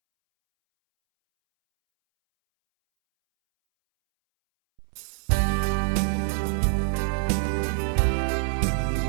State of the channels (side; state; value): left; silent; 62 dB below the other